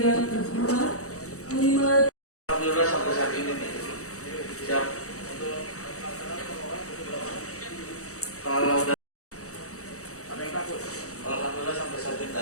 terhormat Panglima. Alhamdulillah sampai saat ini nih siap. Kalau udah ada yang takut, alhamdulillah sampai saat ini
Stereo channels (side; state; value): right; late; 0.65 ms